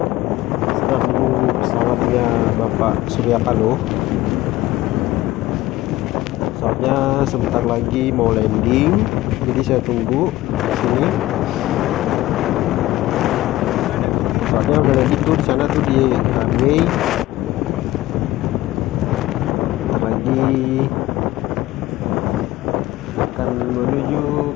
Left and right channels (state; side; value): quieter; right; 16.6 dB